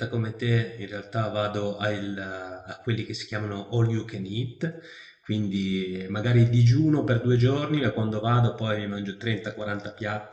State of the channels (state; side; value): identical; both; correlation 1.00